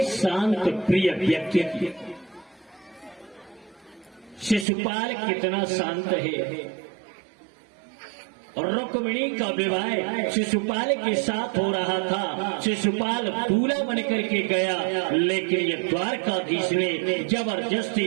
शांत प्रिय व्यक्ति की। शिशुपाल कितना शांत है, और रुक्मिणी का विवाह शिशुपाल के साथ हो रहा था। शिशुपाल दूल्हा बन करके गया, लेकिन ये द्वारकाधीश ने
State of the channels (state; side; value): drops out; left; at 4.7 s